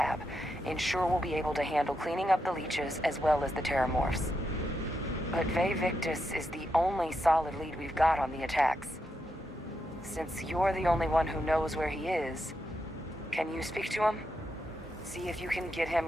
Ensure we'll be able to handle cleaning up the leeches as well as the terramorphs. But Vae Victus is the only solid lead we've got on the attacks. Since you're the only one who knows where he is, can you speak to him? See if you can get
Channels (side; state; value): both; normal; correlation 0.84